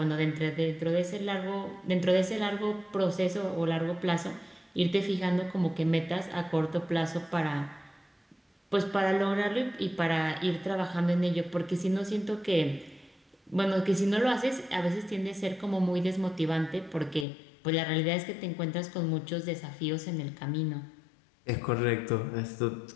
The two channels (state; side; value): drops out; right; at 17.2 s